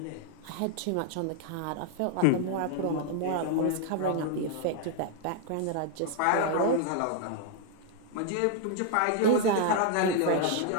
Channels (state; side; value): different; both; correlation 0.00